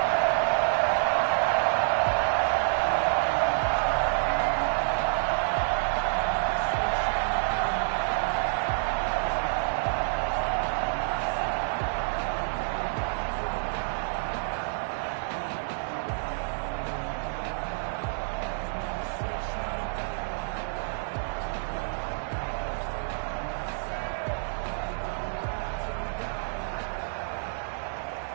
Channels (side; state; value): left; silent; digital silence